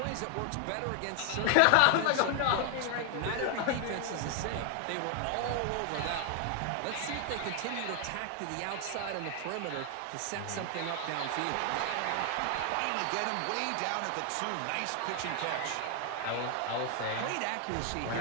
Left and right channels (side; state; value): both; different; correlation 0.00